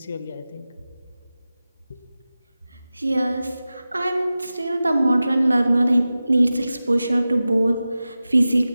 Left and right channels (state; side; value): inverted; both; correlation -0.95